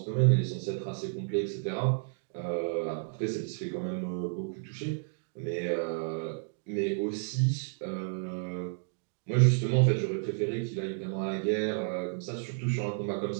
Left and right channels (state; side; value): silent; left; digital silence